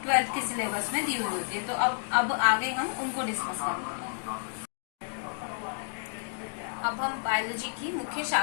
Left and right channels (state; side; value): silent; right; digital silence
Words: 12th के सिलेबस में दी हुई होती है। तो अब आगे हम उनको डिस्कस करेंगे। अब हम बायोलॉजी की मुख्य